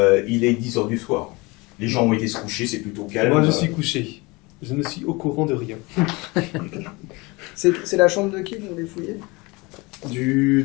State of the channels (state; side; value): quieter; right; 25.0 dB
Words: il est 10h du soir. Les gens ont été se coucher, c'est plutôt calme. Moi, je suis couché. Je ne suis au courant de rien. C'est la chambre de qui vous voulez fouiller?